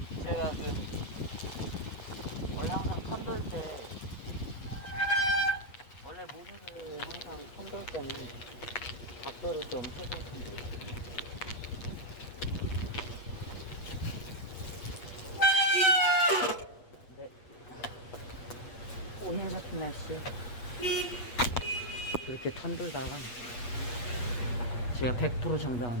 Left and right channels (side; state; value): right; late; 8.2 ms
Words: 제가 원래 항상 편돌 때, 원래 모두를 항상 편돌 때는 각도를 좀 해서 편돌. 근데 오늘 같은 날씨에 그렇게 편돌다가 제가 100%